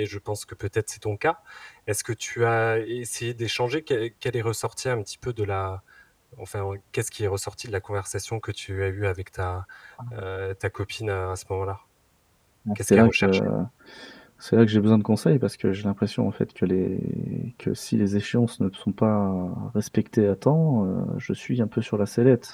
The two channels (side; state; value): both; identical; correlation 1.00